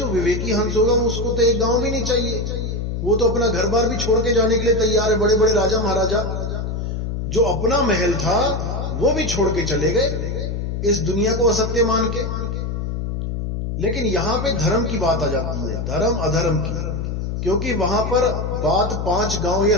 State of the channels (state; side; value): noise; left; hum, 3 dB below the sound